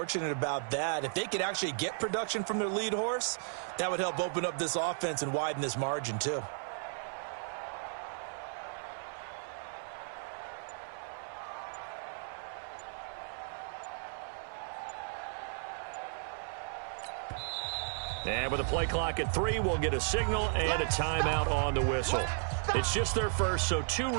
about that. If they could actually get production from their lead horse, that would help open up this offense and widen this margin too. And with a play clock at 3, we'll get a signal and a timeout on the whistle. It's just their first, so 2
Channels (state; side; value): silent; left; 55 dB below the other